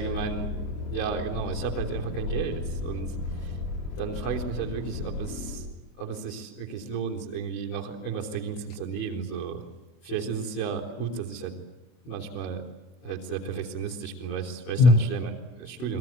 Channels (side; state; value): right; late; 24 ms